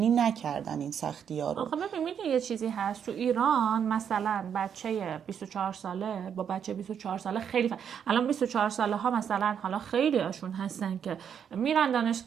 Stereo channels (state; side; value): quieter; left; 8.0 dB